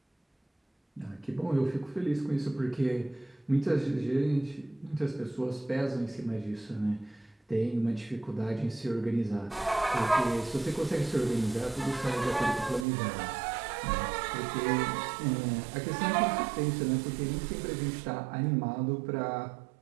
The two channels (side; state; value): left; drops out; at 12.9 s